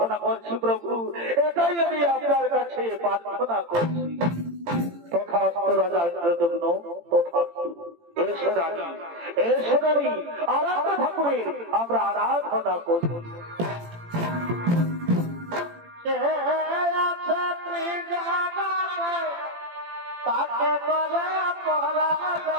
করছি প্রভু, এটাই আমি আপনার কাছে প্রার্থনা করছি। তথাস্তু রাজা ইন্দ্রদগ্ন, তথাস্তু। এসো রানী, এসো রানী, আরাধনা ঠাকুরের আমরা আরাধনা করি। তাকে করে পরাজ,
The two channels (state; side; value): late; left; 18 ms